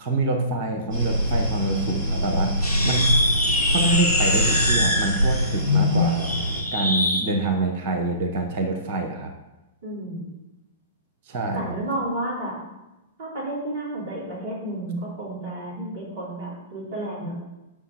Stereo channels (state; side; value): inverted; both; correlation -0.43